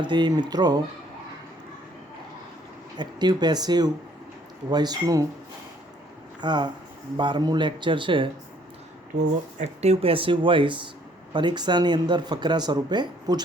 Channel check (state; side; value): normal; both; correlation 0.62